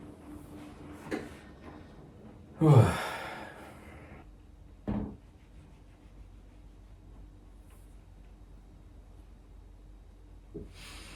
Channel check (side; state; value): both; identical; correlation 1.00